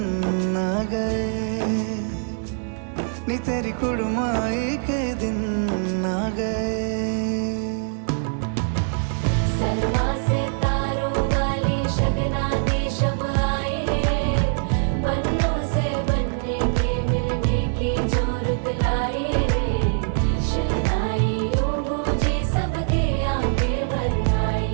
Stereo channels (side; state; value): left; silent; digital silence